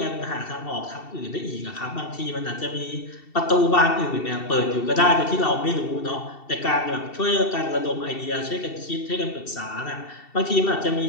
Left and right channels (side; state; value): right; late; 2.7 ms